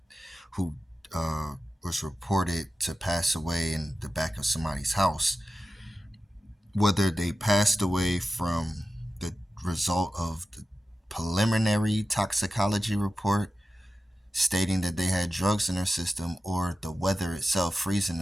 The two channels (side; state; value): both; normal; correlation 0.93